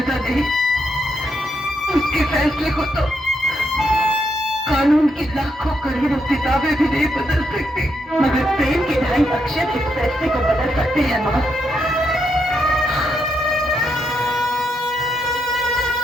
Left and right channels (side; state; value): both; normal; correlation 0.79